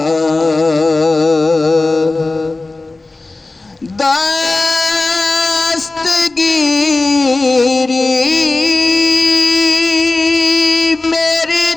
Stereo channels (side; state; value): right; quieter; 3.3 dB